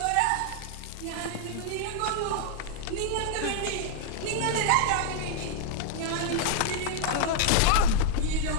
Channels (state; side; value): different; both; correlation 0.00